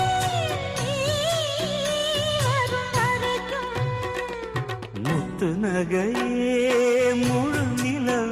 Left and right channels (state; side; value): identical; both; correlation 1.00